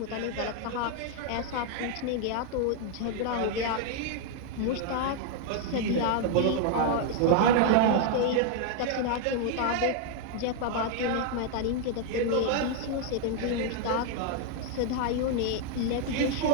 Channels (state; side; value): different; both; correlation 0.00